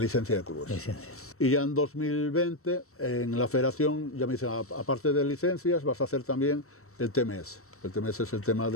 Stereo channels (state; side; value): late; right; 0.63 ms